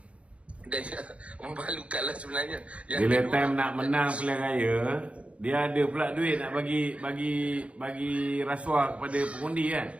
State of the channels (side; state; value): left; late; 0.062 ms